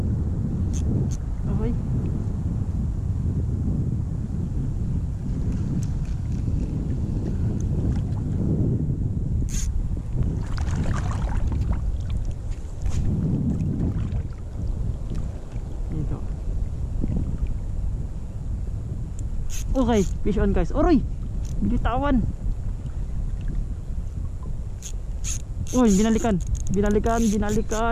Okay. Okay, fish on guys. Oroy, binitawan. Uy, binalikan.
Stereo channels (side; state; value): both; identical; correlation 1.00